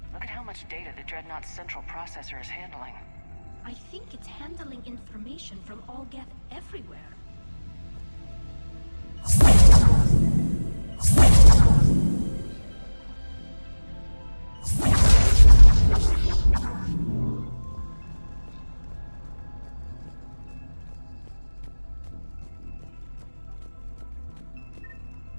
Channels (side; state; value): both; inverted; correlation -1.00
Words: Look at how much data the Dreadnought's central processor is handling. I think it's handling information from all Geth everywhere.